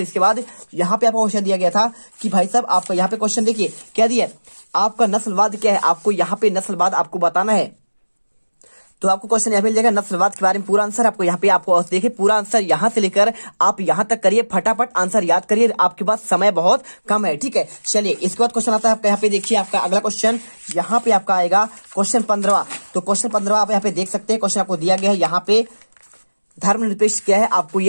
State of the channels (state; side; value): inverted; both; correlation -1.00